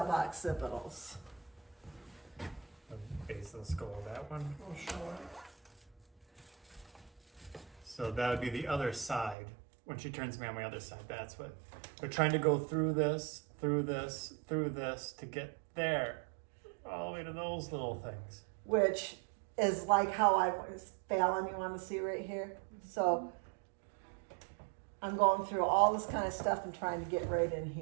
The base of the skull, that one. Oh, sure. So that would be the other side. When she turns me on my other side, that's what we're trying to go through this, through this, through this to get there, all the way to those little things. Which is like how I was, Fallon, you want to see right here? So I'm going through all this kind of stuff and trying to get right in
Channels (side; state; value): left; drops out; at 9.3 s